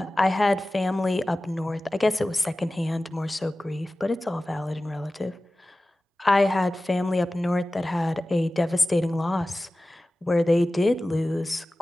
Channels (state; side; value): normal; both; correlation 0.96